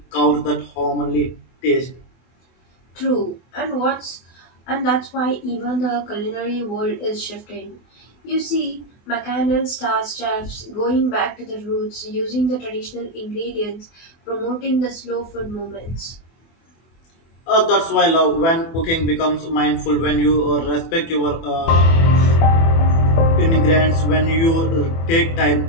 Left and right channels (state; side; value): late; right; 24 ms